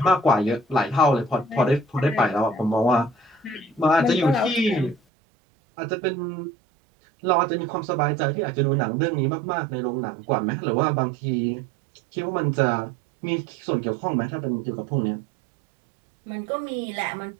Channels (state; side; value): drops out; left; at 5.0 s